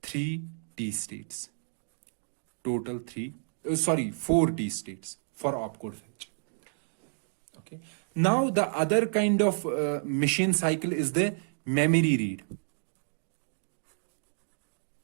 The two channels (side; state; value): left; silent; digital silence